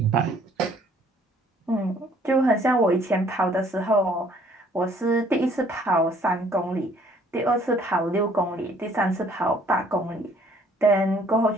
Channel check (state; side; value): normal; both; correlation 0.60